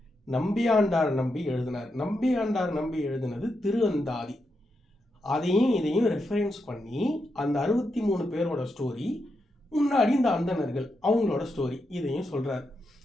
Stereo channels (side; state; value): both; normal; correlation 0.84